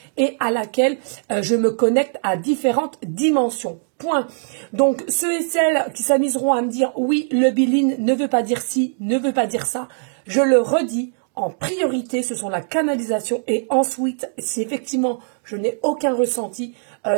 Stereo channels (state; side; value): silent; left; digital silence